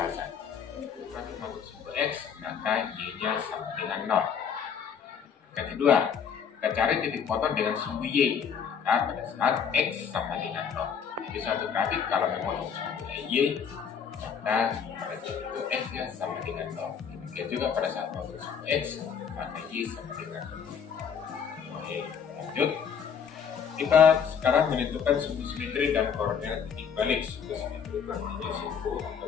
Kurang masuk simbol x, maka y-nya sama dengan 0. Yang kedua, kita cari titik potong dengan sumbu y. Nah, pada saat x sama dengan 0. Jadi suatu grafik kalau memotong sumbu y, maka pada saat itu x-nya sama dengan 0. Demikian juga pada saat memotong sumbu x, maka y sama dengan 0. Oke, lanjut. Kita sekarang menentukan sumbu simetri dan koordinat titik balik. Sumbu simetri artinya sumbu atau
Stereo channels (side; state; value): right; quieter; 7.2 dB